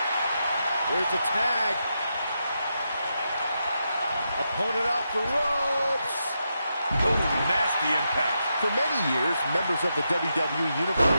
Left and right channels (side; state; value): both; inverted; correlation -0.85